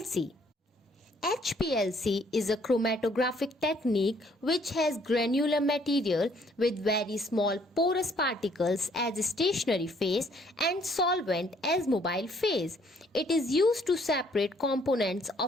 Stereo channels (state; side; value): normal; both; correlation 0.64